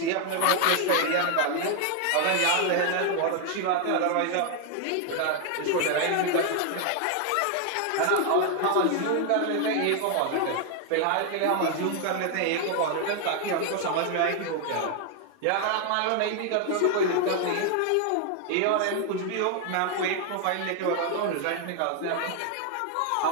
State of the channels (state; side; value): different; both; correlation 0.00